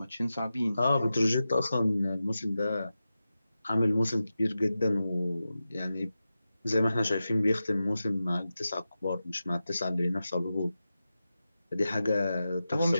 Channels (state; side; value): inverted; both; correlation -0.93